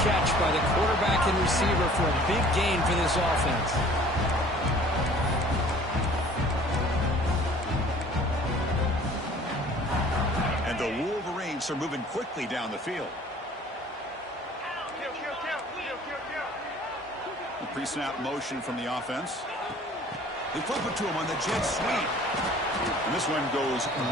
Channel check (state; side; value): normal; both; correlation 0.50